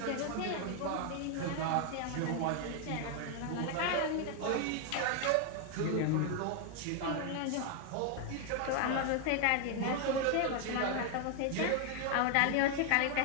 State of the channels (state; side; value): different; both; correlation 0.00